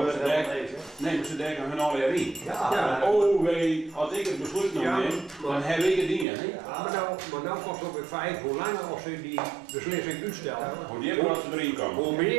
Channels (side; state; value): left; drops out; at 6.2 s